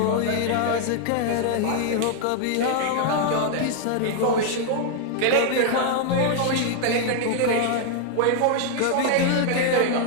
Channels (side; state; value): both; different; correlation 0.00